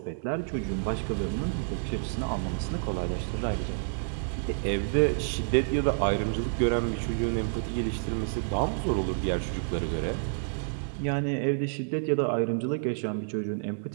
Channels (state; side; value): silent; left; digital silence